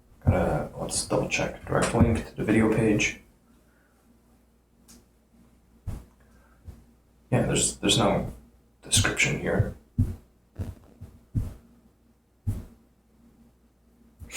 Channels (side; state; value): both; identical; correlation 1.00